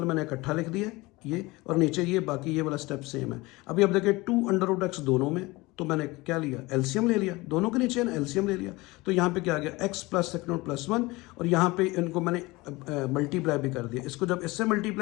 मैंने इकट्ठा लिख दिया ये, और नीचे ये, बाकी ये वाला स्टेप सेम है। अभी आप देखिए 2√x दोनों में, तो मैंने क्या लिया, एलसीएम ले लिया, दोनों के नीचे ना एलसीएम ले लिया, तो यहाँ पे क्या आ गया x + 1, और यहाँ पे इनको मैंने मल्टीप्लाई भी कर दिया। इसको जब इससे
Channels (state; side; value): quieter; right; 22.0 dB